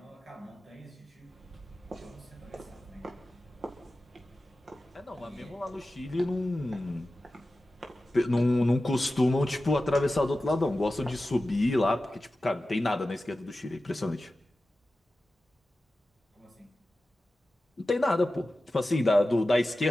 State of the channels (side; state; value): both; normal; correlation 0.94